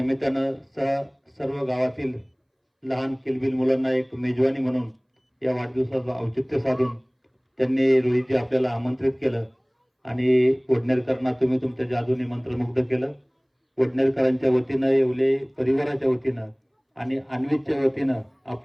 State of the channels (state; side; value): identical; both; correlation 1.00